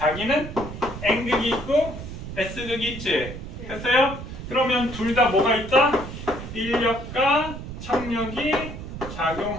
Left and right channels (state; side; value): noise; right; rumble, 10 dB below the sound